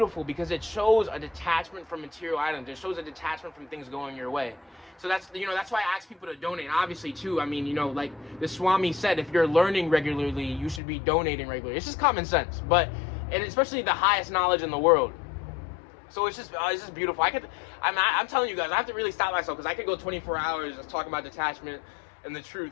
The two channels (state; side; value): drops out; right; at 10.8 s